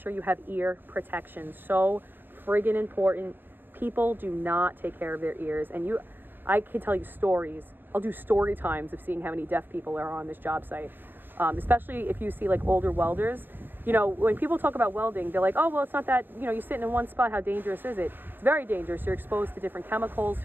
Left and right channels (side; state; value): left; late; 0.095 ms